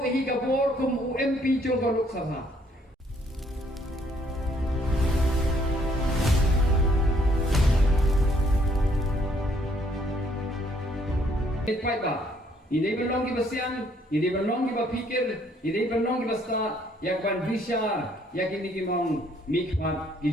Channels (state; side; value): normal; both; correlation 0.66